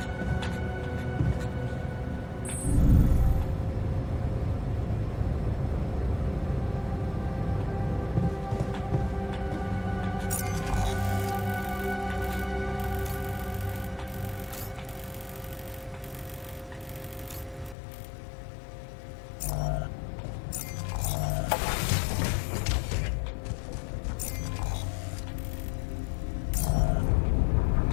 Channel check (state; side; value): drops out; right; at 17.8 s